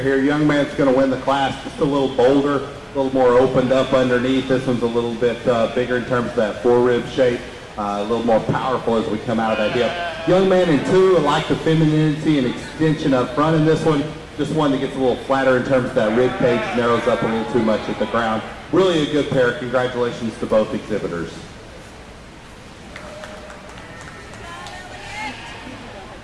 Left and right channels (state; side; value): identical; both; correlation 1.00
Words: here. Young man's going to win the class. Just a little bolder, a little more opened up underneath. This one's a little bit bigger in terms of that forerib shape. A little more powerful as we come out of that hip. Young man in 2, I like the femininity and extension up front in this one. Just one that gets a little flatter in terms of that rib cage, narrows up a little too much at the ground. Really a good pair. Congratulations to both exhibitors.